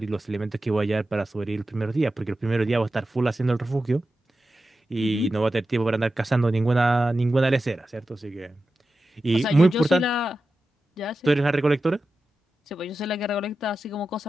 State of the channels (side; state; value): both; normal; correlation 0.92